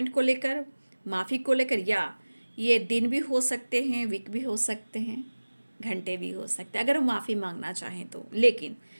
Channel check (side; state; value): both; inverted; correlation -1.00